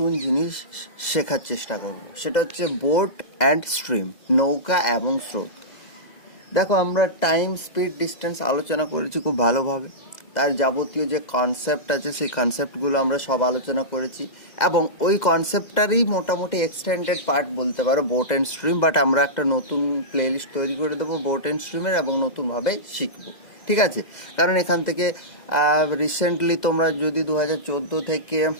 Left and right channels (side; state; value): right; late; 2.0 ms